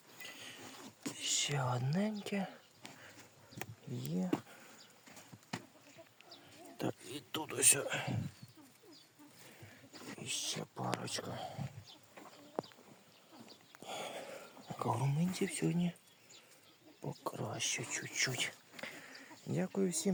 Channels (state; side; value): identical; both; correlation 1.00